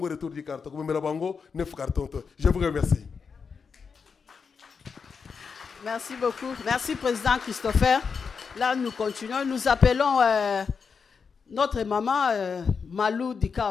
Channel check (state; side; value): quieter; right; 5.7 dB